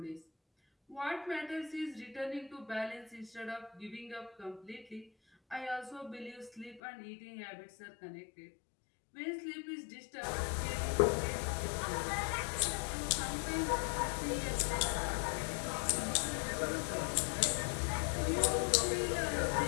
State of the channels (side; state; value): right; drops out; at 6.8 s